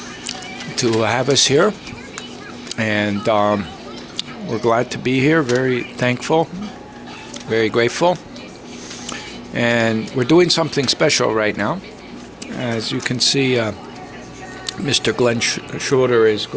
to have us here, and we're glad to be here. Very thankful, very grateful, and we're doing something special right now. As you can see, Mr. Glenn Schroeder is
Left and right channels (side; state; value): both; identical; correlation 1.00